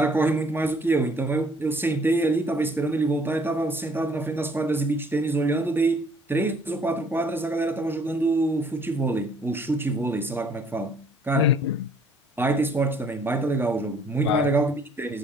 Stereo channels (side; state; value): both; normal; correlation 0.60